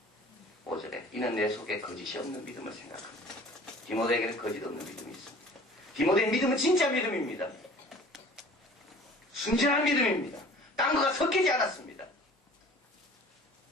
가보겠습니다. 5절에 이는 내 속에 거짓이 없는 믿음을 생각합니다. 디모데에게는 거짓 없는 믿음이 있습니다. 디모데의 믿음은 진짜 믿음입니다. 순전한 믿음입니다. 딴 거가 섞이지 않았습니다.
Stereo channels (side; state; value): both; normal; correlation 0.47